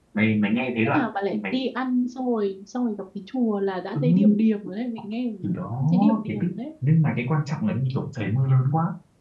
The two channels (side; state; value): both; identical; correlation 1.00